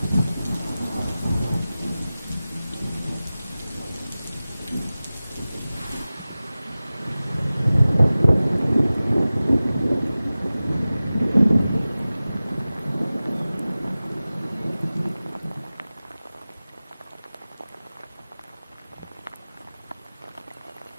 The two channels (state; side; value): inverted; both; correlation -0.97